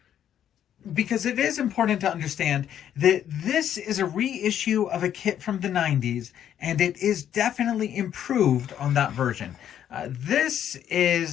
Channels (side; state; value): right; quieter; 10.1 dB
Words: Because it is important to understand that this is a reissue of a kit from the 90s, and it is definitely improved on that version. This